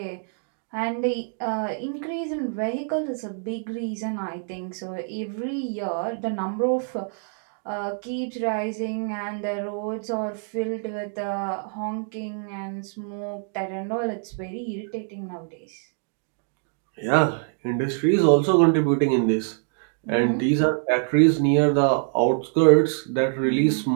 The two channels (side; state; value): left; silent; 62 dB below the other